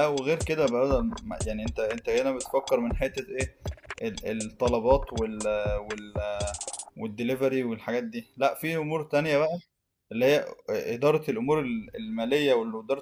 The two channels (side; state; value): both; identical; correlation 1.00